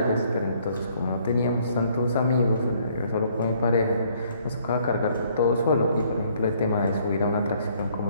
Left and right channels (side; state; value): both; inverted; correlation -0.64